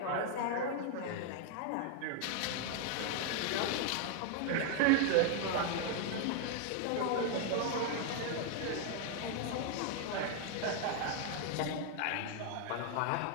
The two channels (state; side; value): different; both; correlation 0.01